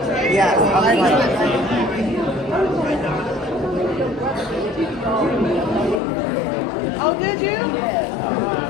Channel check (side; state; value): right; drops out; at 6.0 s